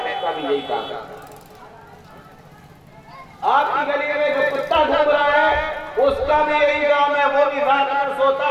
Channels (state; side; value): identical; both; correlation 1.00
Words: کا بھی یہی کام ہے۔ آپ کی گلی میں جو کتا گھوم رہا ہے اس کا بھی یہی کام ہے، وہ بھی رات میں سوتا